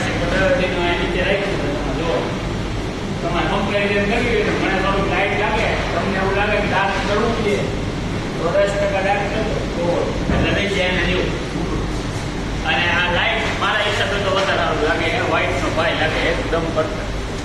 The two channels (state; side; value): identical; both; correlation 1.00